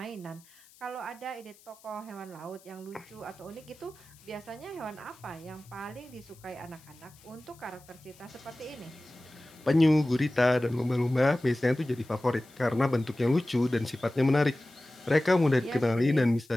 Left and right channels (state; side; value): noise; left; hiss, 26 dB below the sound